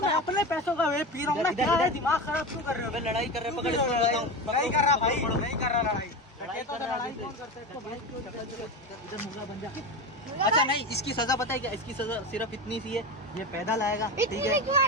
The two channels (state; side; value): normal; both; correlation 0.23